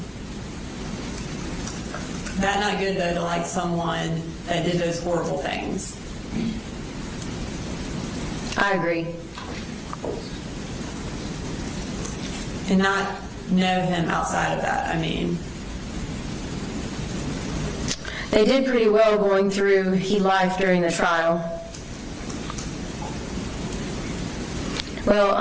That's not good, though, to like someone that did those horrible things. I agree. And not know him outside of that, I mean. They did pretty well going through life during the trial.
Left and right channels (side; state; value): both; identical; correlation 1.00